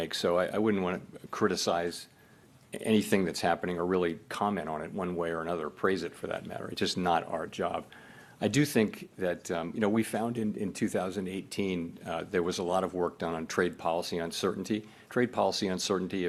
So I wouldn't want to criticize anything that's happening or really comment on it one way or another, praise it for that matter. It's just not our job. I do think that, you know, we found in 2018 there was a lot of work done on trade policy uncertainty. Trade policy uncertainty,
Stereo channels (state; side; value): identical; both; correlation 1.00